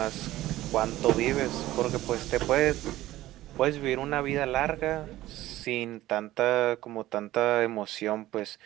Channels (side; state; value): left; quieter; 15.7 dB